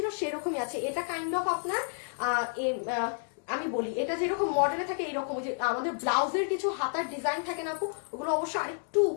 সেরকমই আছে। এটা কাইন্ড অফ আপনার আমি বলি, এটা যেরকম মডেলে থাকে এইরকম, যে আমাদের ব্লাউজের কিছু হাতার ডিজাইন থাকে না আপু, ওগুলো অবশ্য আরেকটু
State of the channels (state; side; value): silent; right; 57 dB below the other